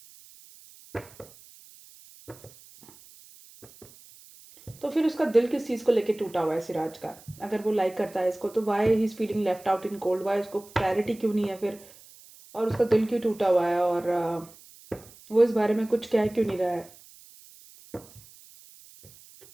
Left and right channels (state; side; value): noise; right; hiss, 23 dB below the sound